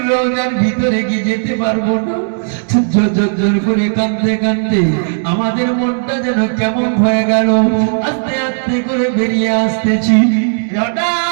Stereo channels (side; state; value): left; silent; digital silence